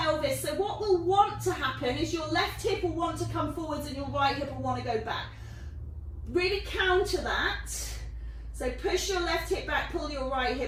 So what will want to happen is your left hip will want to come forwards and your right hip will want to go back. Really counter that. So push your left hip back, pull your right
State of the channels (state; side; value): identical; both; correlation 1.00